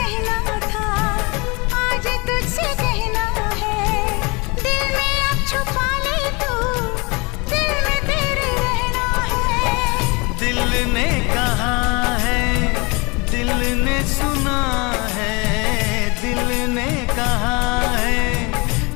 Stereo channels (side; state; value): right; quieter; 28.1 dB